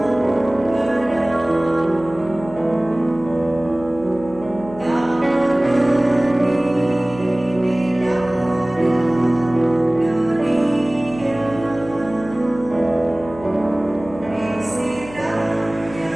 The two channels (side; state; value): left; noise; hum, 17 dB below the sound